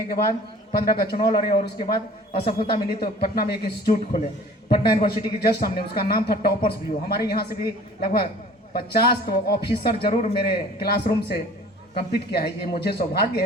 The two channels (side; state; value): both; normal; correlation 0.48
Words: के बाद 15 का चुनाव लड़े और उसके बाद असफलता मिली तो पटना में एक इंस्टीट्यूट खोले, पटना यूनिवर्सिटी के जस्ट सामने। उसका नाम था टॉपर्स व्यू। हमारे यहाँ से भी लगभग 50 तो ऑफिसर जरूर मेरे क्लासरूम से कंप्लीट किया है, ये मुझे सौभाग्य